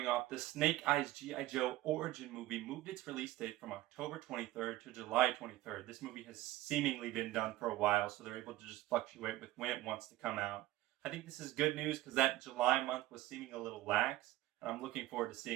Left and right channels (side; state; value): left; quieter; 16.3 dB